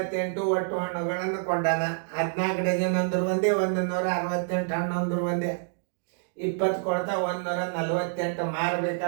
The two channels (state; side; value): silent; left; digital silence